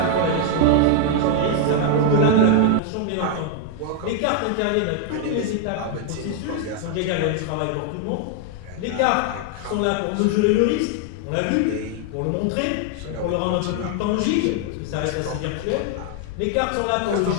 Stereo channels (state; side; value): different; both; correlation 0.00